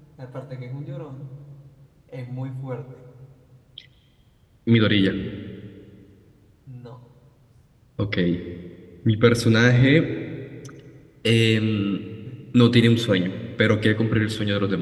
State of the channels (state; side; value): identical; both; correlation 1.00